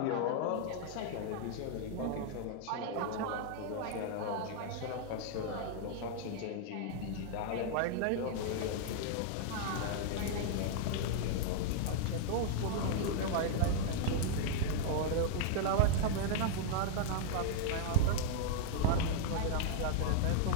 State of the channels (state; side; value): different; both; correlation 0.00